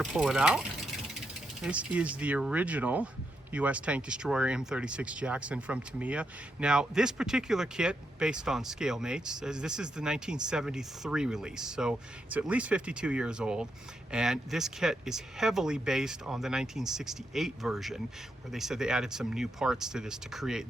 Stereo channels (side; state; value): both; normal; correlation 0.82